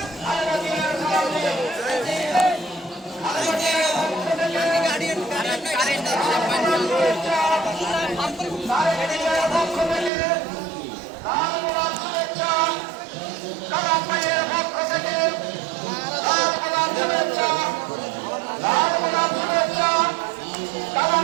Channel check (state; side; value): drops out; left; at 10.1 s